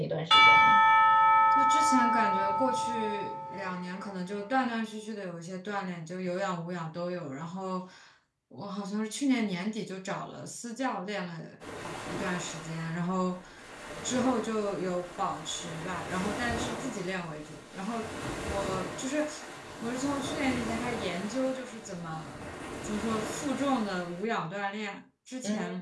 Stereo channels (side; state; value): both; identical; correlation 1.00